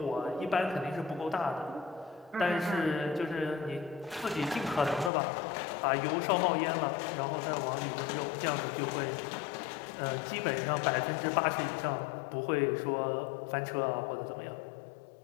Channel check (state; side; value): drops out; right; at 5.1 s